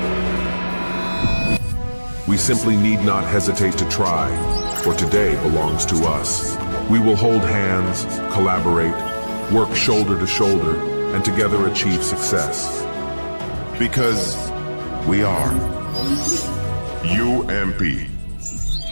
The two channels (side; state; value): both; inverted; correlation -1.00